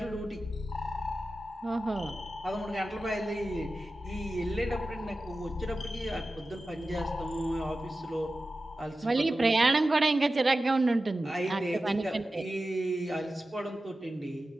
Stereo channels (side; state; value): both; normal; correlation 0.94